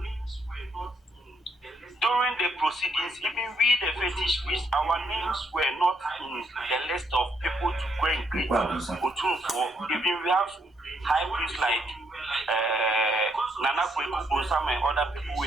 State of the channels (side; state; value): both; normal; correlation 0.74